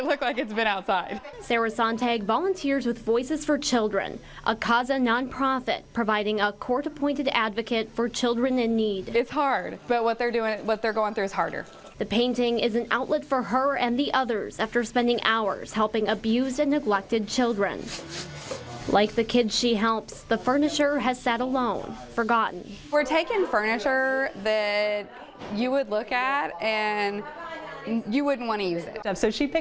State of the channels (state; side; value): identical; both; correlation 1.00